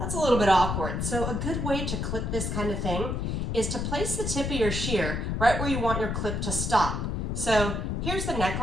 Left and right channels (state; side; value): noise; left; rumble, 1 dB below the sound